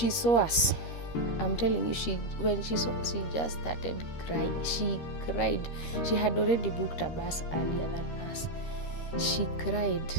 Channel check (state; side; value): late; right; 13 ms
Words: saw us. I'm telling you, when she saw us, she just started crying. She cried. She had already booked a bus earlier than us. She cried